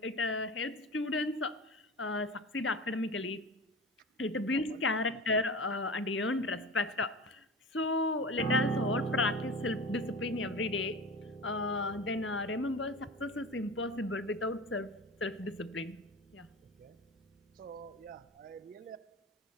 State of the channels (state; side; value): normal; both; correlation 0.32